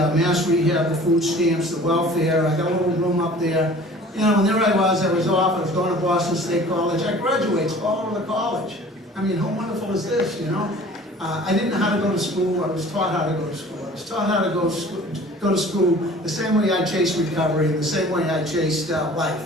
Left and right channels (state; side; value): normal; both; correlation 0.46